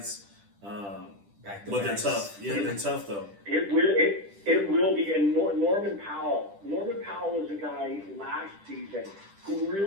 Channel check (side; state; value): left; late; 10 ms